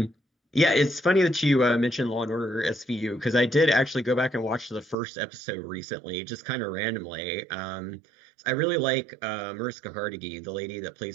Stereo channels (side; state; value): left; drops out; at 5.0 s